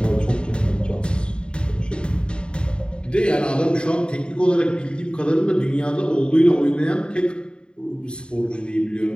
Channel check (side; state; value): right; late; 0.052 ms